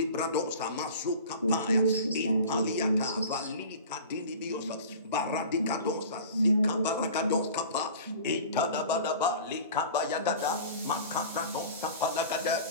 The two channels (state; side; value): inverted; both; correlation -0.40